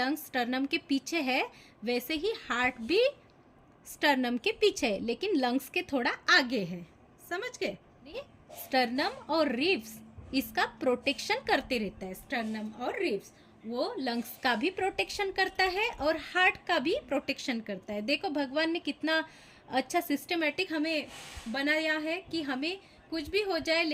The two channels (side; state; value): both; identical; correlation 1.00